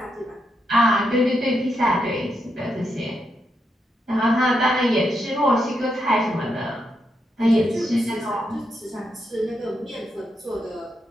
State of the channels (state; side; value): normal; both; correlation 0.82